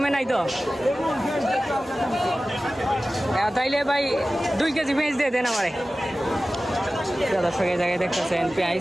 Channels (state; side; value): normal; both; correlation 0.96